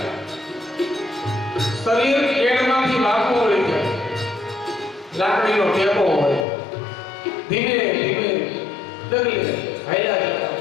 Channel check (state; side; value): drops out; right; at 6.5 s